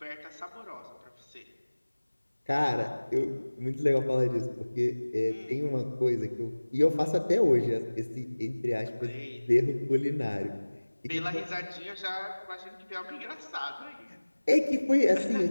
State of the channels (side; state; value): both; inverted; correlation -1.00